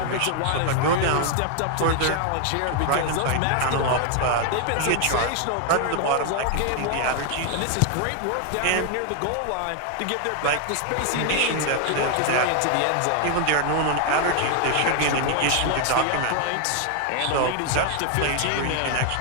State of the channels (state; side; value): different; both; correlation 0.00